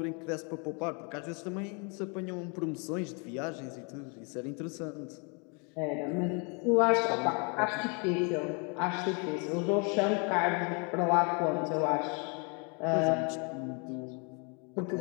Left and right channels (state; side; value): quieter; right; 35.0 dB